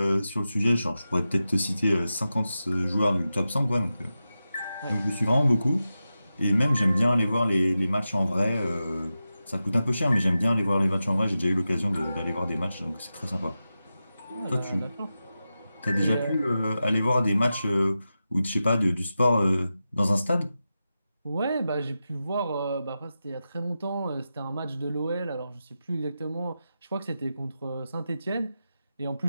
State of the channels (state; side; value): inverted; both; correlation -0.92